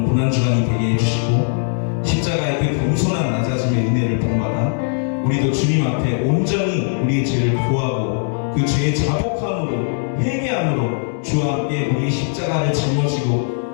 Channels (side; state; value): right; silent; 63 dB below the other